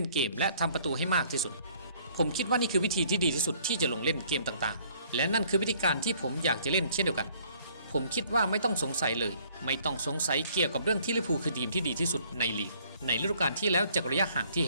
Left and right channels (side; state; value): both; inverted; correlation -0.60